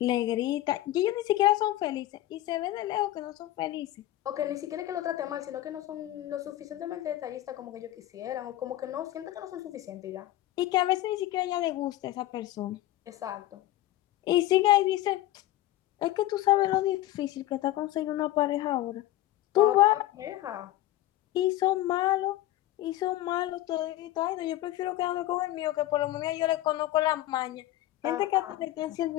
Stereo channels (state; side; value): quieter; right; 14.8 dB